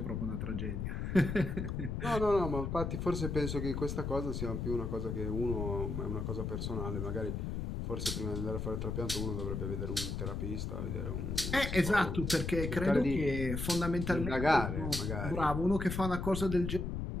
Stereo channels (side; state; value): left; noise; rumble, 3 dB below the sound